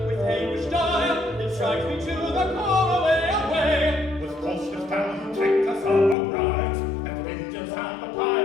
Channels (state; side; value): drops out; right; at 6.2 s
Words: with anguish dire, it strikes me to the core, away, away. with cautious down, take us of our prize, and vengeance and the